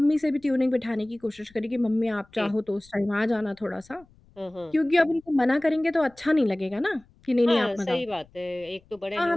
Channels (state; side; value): noise; left; rumble, 29 dB below the sound